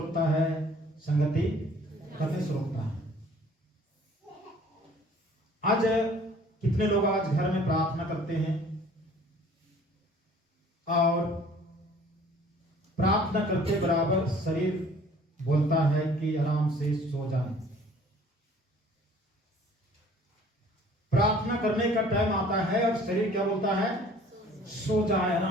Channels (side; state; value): both; normal; correlation 0.53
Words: है, संगति करने से रोकता है। आज कितने लोग आज घर में प्रार्थना करते हैं और प्रार्थना करते बराबर शरीर बोलता है कि आराम से सो जाए। प्रार्थना करने का टाइम आता है और शरीर क्या बोलता है, सो जाए,